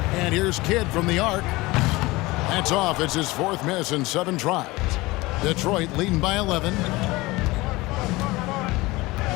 And here's Kidd from the arc. That's off. It's his 4th miss in 7 tries. Detroit leading by 11.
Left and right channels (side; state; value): right; quieter; 21.2 dB